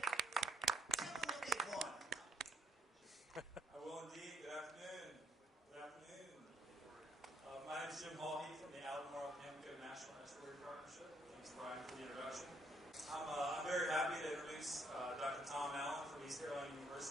Tell them what they've won. I will indeed. Good afternoon. Good afternoon. My name is Jim Hall from the Albemarle-Pamlico National Estuary Partnership. Thanks, Brian, for the introduction. I'm very happy to introduce Dr. Tom Allen from East Carolina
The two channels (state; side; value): normal; both; correlation 0.71